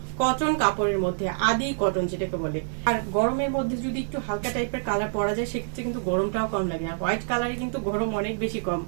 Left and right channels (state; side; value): silent; left; digital silence